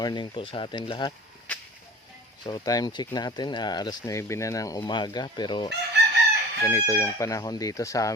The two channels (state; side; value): normal; both; correlation 0.42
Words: po sa atin lahat. So time check natin, alas 9 na ng umaga, pero ganito yung panahon dito sa